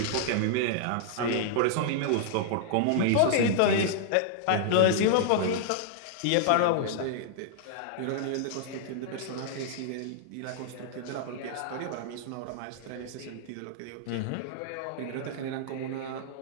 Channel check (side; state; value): both; different; correlation -0.01